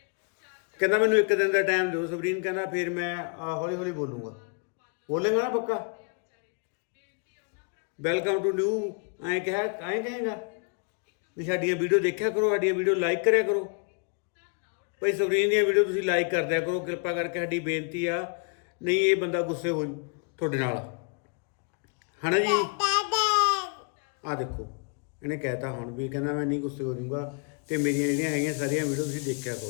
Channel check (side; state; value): right; quieter; 37.2 dB